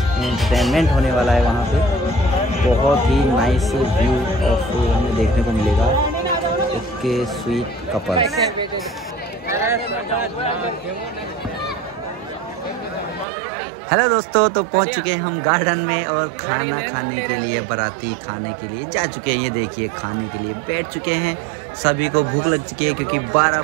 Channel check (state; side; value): drops out; left; at 13.2 s